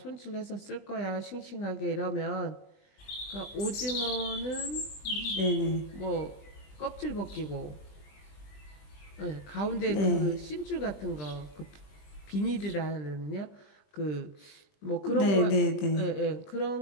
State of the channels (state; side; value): late; right; 20 ms